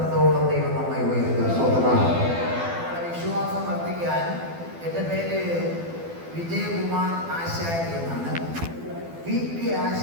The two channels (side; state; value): left; late; 12 ms